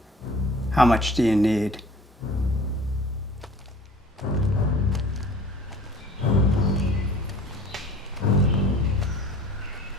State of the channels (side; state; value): both; normal; correlation 0.47